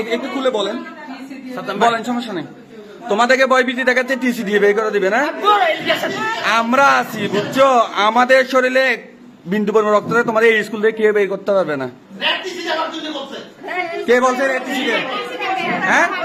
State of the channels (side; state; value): both; identical; correlation 1.00